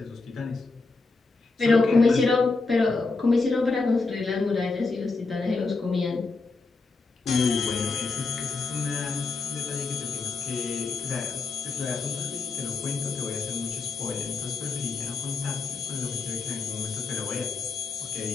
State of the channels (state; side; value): quieter; right; 4.1 dB